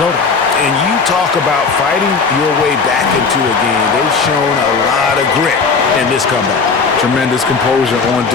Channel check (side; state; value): right; quieter; 4.9 dB